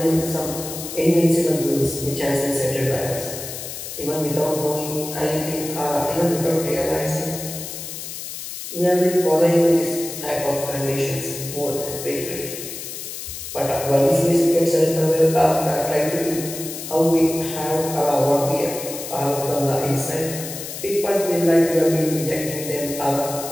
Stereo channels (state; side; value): noise; left; hiss, 9 dB below the sound